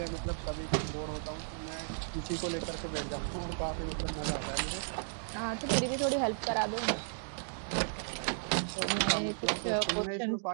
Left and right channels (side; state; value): left; silent; digital silence